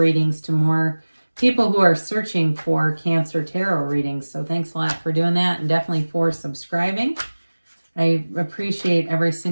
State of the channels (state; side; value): inverted; both; correlation -1.00